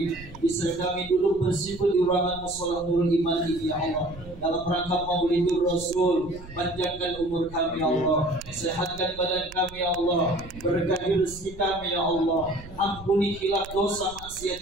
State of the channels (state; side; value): noise; right; rumble, 17 dB below the sound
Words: bisa kami duduk bersimpul di ruangan mushola Nurul Iman ini ya Allah, dalam rangka Maulidur Rasul. Panjangkan umur kami ya Allah, sehatkan badan kami ya Allah, berkahi rezeki kami ya Allah, ampuni khilaf dosa maksiat